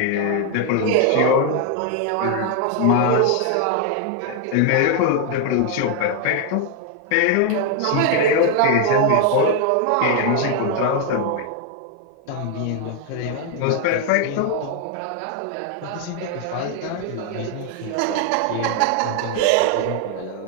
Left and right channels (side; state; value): both; different; correlation 0.00